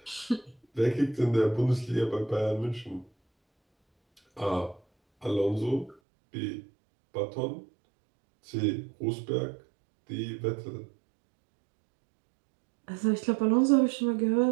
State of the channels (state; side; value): drops out; left; at 6.0 s